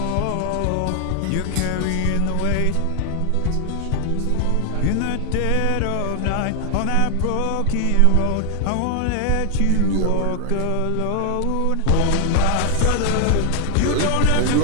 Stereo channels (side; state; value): both; different; correlation 0.00